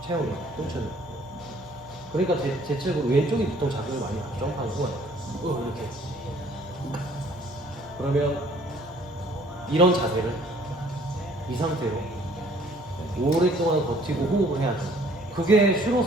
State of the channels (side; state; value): both; normal; correlation 0.58